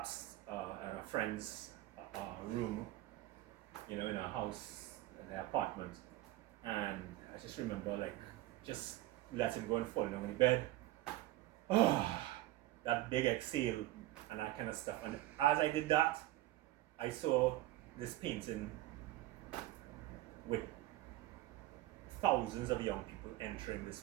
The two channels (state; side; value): quieter; left; 16.2 dB